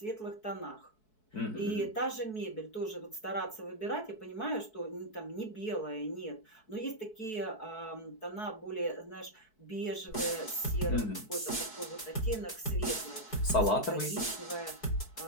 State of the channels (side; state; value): right; late; 4.6 ms